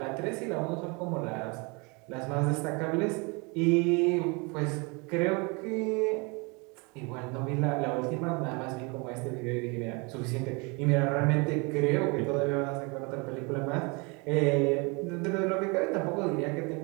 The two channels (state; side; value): quieter; left; 29.7 dB